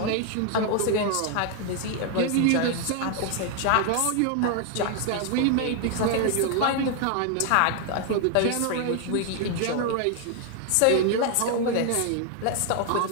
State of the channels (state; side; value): different; both; correlation 0.00